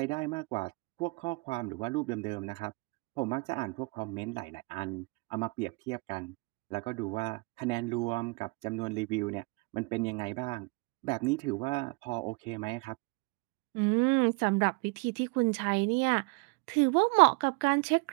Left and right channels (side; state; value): left; quieter; 28.6 dB